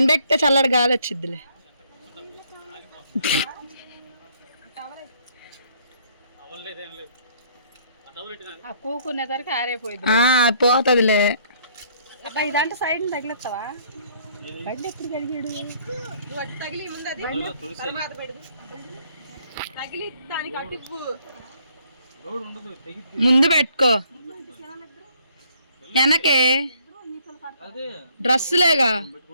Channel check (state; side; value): inverted; both; correlation -0.64